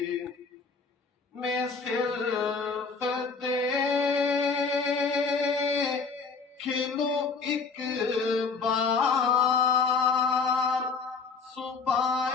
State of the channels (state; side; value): quieter; right; 4.8 dB